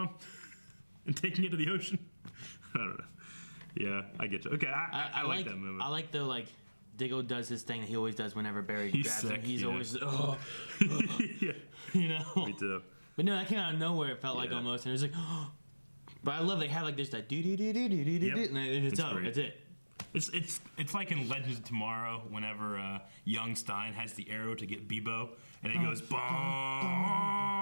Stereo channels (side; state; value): both; inverted; correlation -1.00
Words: and taking it to the ocean? I don't know. Yeah, I get you. Okay, I like that moment. I like the Diggle does his thing that he always does whenever Barry grabs sick, him. He's yeah. always Yeah. You know. Me too. But no, that came out of nowhere. It felt like almost, and it was like, but I love they have like this that do do do do do do do, and it's over. That's it. It's like in Legends of Tomorrow whenever young Stein has the arrow to get Bebo and it goes bong.